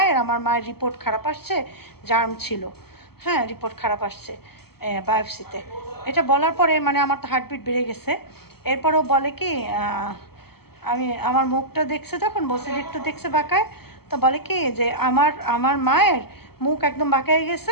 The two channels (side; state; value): right; late; 0.96 ms